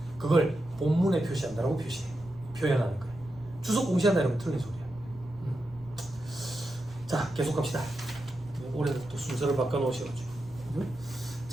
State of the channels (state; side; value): noise; right; rumble, 20 dB below the sound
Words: 그걸 본문에 표시한다라고 표현하는 거예요. 주석 공시한다 이러면 틀린 소리야. 자, 계속 갑시다. 올해 또 순서를 바꿔놓으셔가지고.